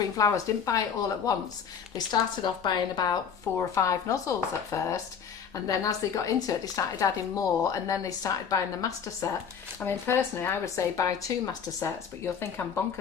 Flowers didn't buy it all at once. They started off buying about 4 or 5 nozzles at first, and then as they got into it, they started adding more, and then they started buying the Master Set. I mean, personally, I would say buy 2 Master Sets, but you'll think I'm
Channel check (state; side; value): quieter; right; 7.0 dB